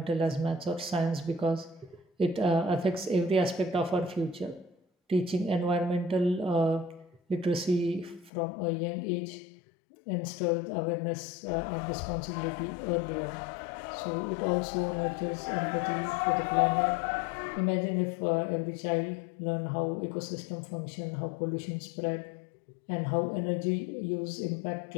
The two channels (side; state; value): right; drops out; at 8.3 s